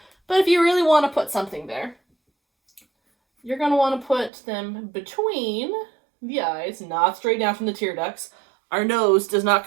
But if you really want to put something there, you're going to want to put them between the eyes, not straight down from the tear ducts. Our nose does not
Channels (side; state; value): left; drops out; at 4.3 s